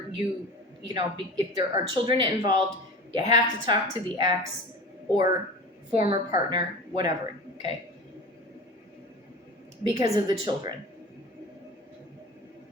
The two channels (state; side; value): normal; both; correlation 0.34